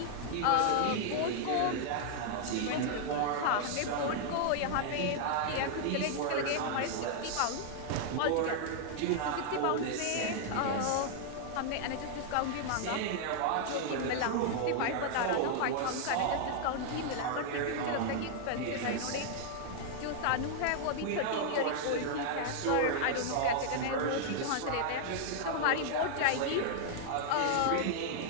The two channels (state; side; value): different; both; correlation -0.01